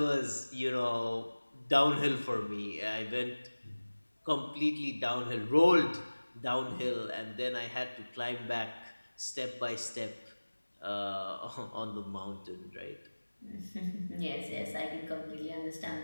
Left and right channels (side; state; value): both; inverted; correlation -1.00